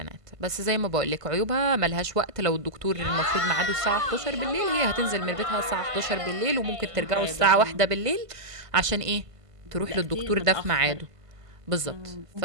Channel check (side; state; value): left; late; 1.5 ms